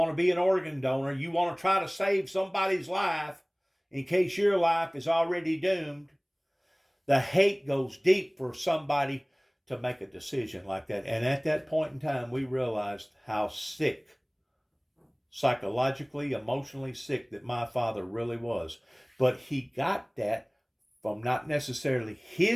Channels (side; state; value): both; identical; correlation 1.00